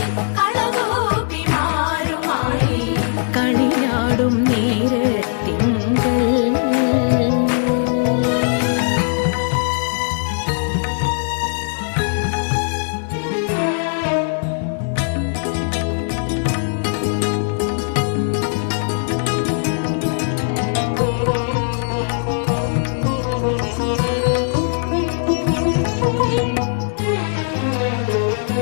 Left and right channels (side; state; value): right; silent; digital silence